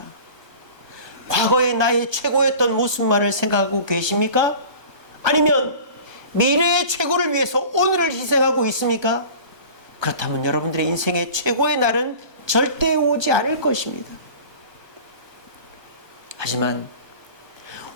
과거의 나의 최고였던 모습만을 생각하고 계십니까? 아니면 미래의 최고를 위해서 오늘을 희생하고 있습니까? 그렇다면 여러분들의 인생의 최고의 날은 절대 오지 않을 것입니다. 하지만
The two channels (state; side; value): late; left; 1.2 ms